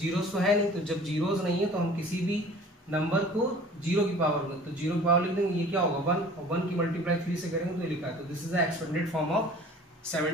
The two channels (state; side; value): normal; both; correlation 0.46